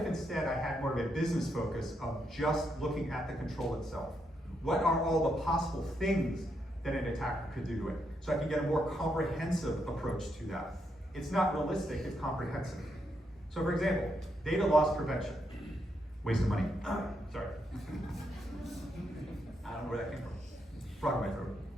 instead I had more of a business focus of just looking at the control itself? What are all the possible things that an attacker could do to it? So I can get a more comprehensive approach to that. It's not realistic, it's comprehensive. So for example, data loss prevention. Waste of money. Sorry. I don't know where that came from. Frog in my throat.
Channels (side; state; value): both; normal; correlation 0.80